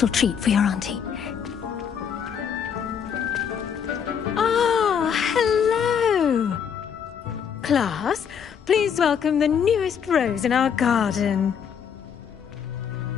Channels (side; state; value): right; quieter; 7.6 dB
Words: treat for your auntie. Ah, hello. Class, please welcome the newest rose in our garden.